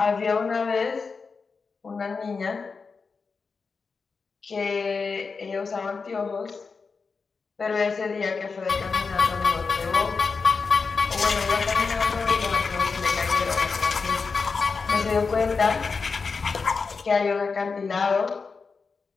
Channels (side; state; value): right; quieter; 4.8 dB